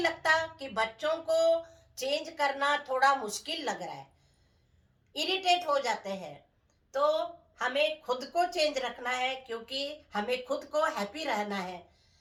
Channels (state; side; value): identical; both; correlation 1.00